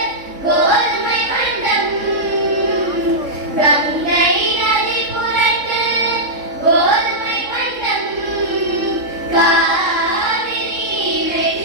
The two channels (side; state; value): left; late; 3.6 ms